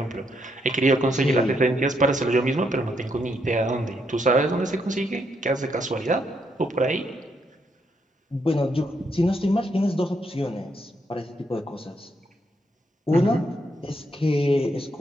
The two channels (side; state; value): both; normal; correlation 0.77